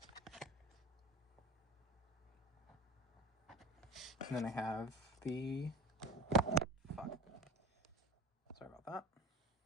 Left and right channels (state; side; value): normal; both; correlation 0.37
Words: And then I have the... Fuck. Sorry about that.